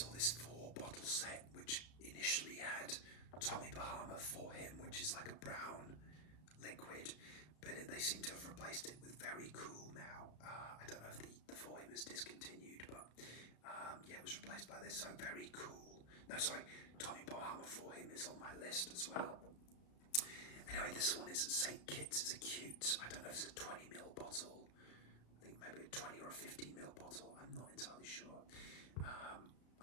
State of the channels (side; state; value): right; late; 33 ms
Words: this 4-bottle set, which initially had Tommy Bahama For Him, which is like a brown liquid, but they seem to have replaced it with Very Cool now. I don't know if the For Him is discontinued, but yeah, it was replaced by this. So Very Cool. No, sorry, Tommy Bahama For Him is on my list as well. Anyway, this one is St. Kitts. It's a cute, I don't know if it's a 20ml bottle. I think maybe a 20 or a 15ml bottle. I'm not entirely sure.